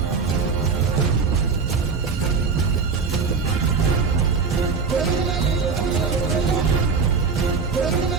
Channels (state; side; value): quieter; left; 5.1 dB